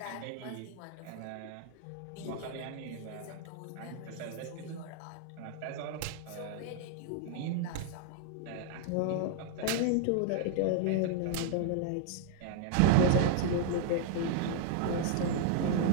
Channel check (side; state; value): both; different; correlation 0.00